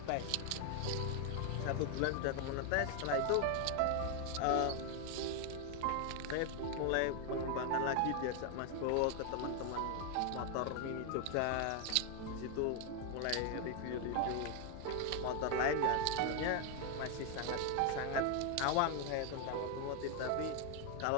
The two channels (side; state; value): both; different; correlation 0.01